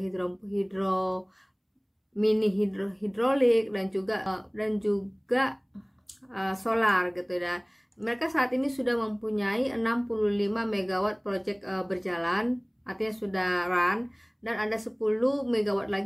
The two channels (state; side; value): identical; both; correlation 1.00